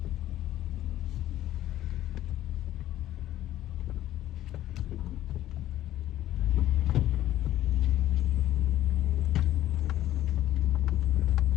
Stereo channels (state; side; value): quieter; right; 13.3 dB